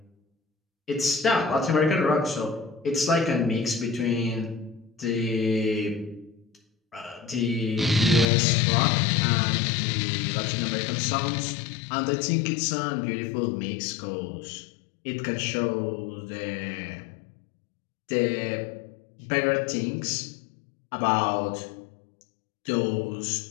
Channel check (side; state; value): right; drops out; at 8.2 s